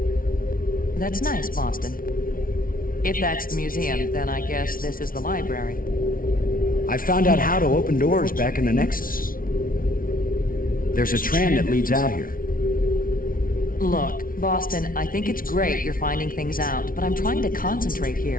That's nice, Boston. If that's the museum, then I guess this is the library. I found out how to open doors back in the Nexus. There's a tram that leads out here. Look, Boston, I think it's great you're finding things out, but I'm trying to concentrate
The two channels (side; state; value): right; late; 0.41 ms